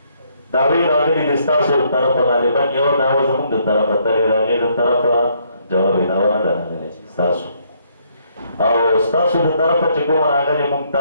دعوې راغلي دي ستاسو د طرفه غالبا یوه دعوه زموږ د طرفه ترې راغې د طرفه جواب دعوه نه ده راغلې ستاسو او ستاسو د طرفه چې کومه راغلې موږ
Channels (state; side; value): inverted; both; correlation -0.70